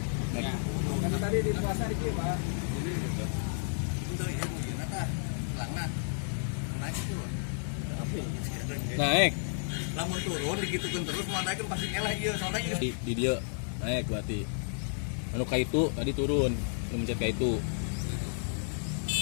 Naik. Karena tadi di puasa di kieu, Pak. Ini gitu. Teu ieu mungkin tah. Langna. Naik turun. Naik. Lamun turun digitukeun terus mau naik pasti ngeleh ieu soalnya ieu. Di dia naik berarti. Anu ka itu tadi turun, anu mencet ka itu.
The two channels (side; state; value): right; silent; digital silence